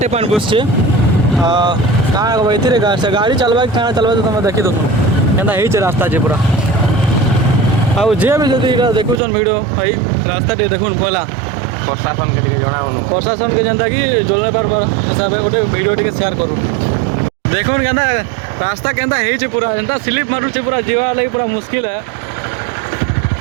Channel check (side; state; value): left; drops out; at 9.2 s